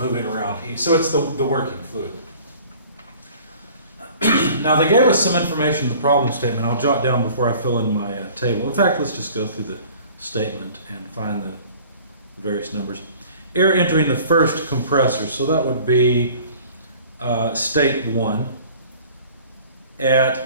around heat. So it's the working fluid. Now they gave us some information in the problem statement. I'll jot down before I fill in my table. In fact, let's just go through the statement and find the various numbers. Air entering the first compressor, so that would be state 1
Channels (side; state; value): both; inverted; correlation -0.49